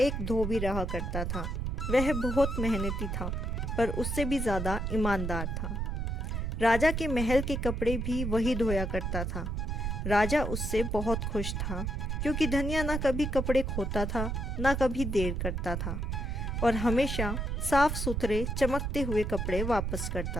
धोबी रहा करता था। वह बहुत मेहनती था, पर उससे भी ज़्यादा ईमानदार था। राजा के महल के कपड़े भी वही धोया करता था। राजा उससे बहुत खुश था, क्योंकि धनिया ना कभी कपड़े खोता था, ना कभी देर करता था, और हमेशा साफ सुथरे चमकते हुए कपड़े वापस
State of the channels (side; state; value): right; noise; rumble, 2 dB below the sound